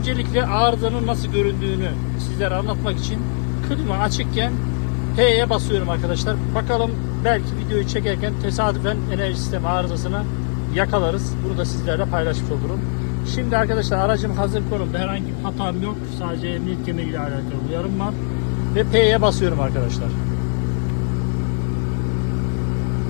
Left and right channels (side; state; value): right; silent; 64 dB below the other